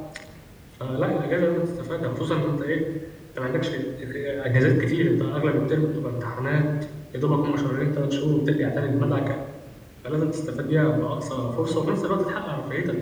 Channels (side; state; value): both; identical; correlation 1.00